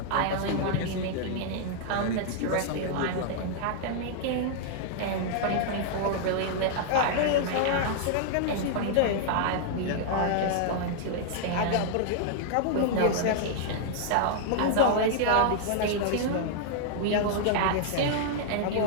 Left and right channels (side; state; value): both; different; correlation -0.01